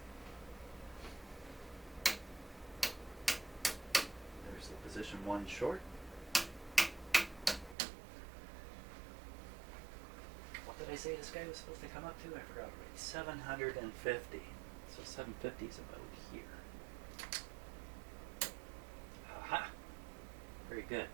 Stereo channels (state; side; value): drops out; left; at 7.8 s